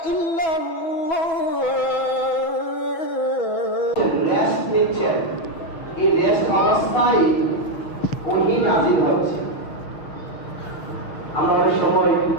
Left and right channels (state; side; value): late; right; 6.1 ms